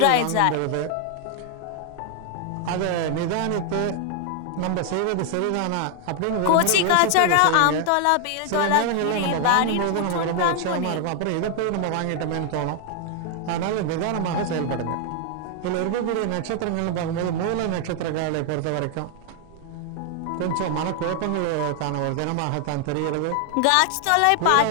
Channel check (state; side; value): different; both; correlation 0.00